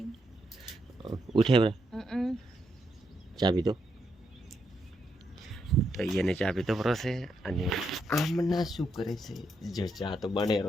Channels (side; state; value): both; normal; correlation 0.80